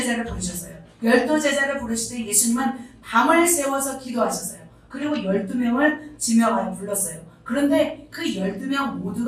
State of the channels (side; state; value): both; identical; correlation 1.00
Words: 부르셨어요. 12제자를 부르실 때 예수님은 밤을 새워서 기도하셨어요. 그리고 12명을 지명하여 불렀어요. 그런데 그 12명